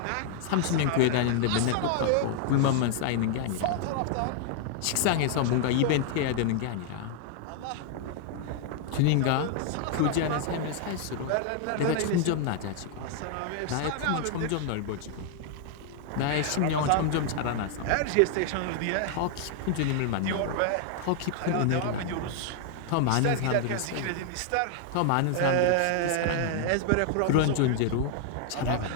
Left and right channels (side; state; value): both; different; correlation 0.00